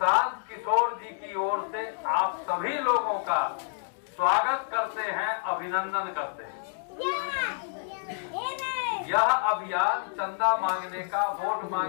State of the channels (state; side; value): silent; right; digital silence